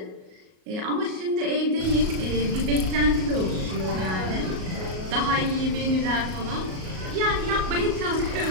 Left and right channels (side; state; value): left; late; 38 ms